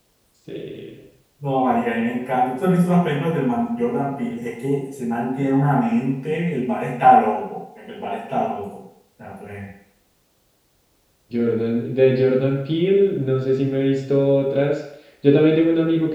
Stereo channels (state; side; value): identical; both; correlation 1.00